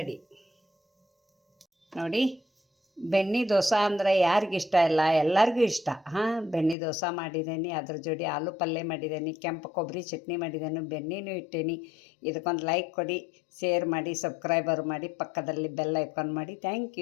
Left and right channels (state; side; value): drops out; right; at 6.8 s